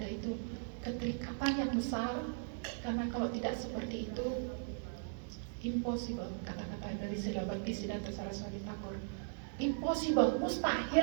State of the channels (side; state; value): left; silent; digital silence